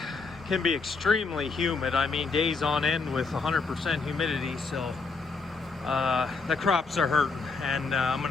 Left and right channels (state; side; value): quieter; right; 4.4 dB